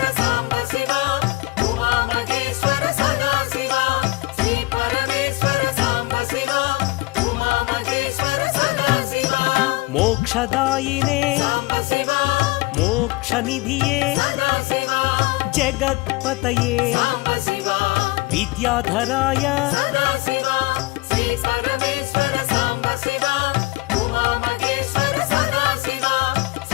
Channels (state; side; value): quieter; right; 21.7 dB